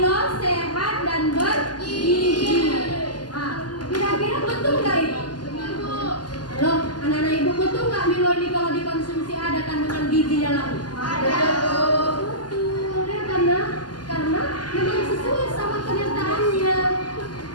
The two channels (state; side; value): late; right; 0.70 ms